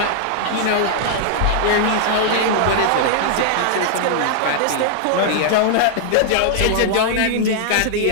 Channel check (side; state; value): both; different; correlation -0.01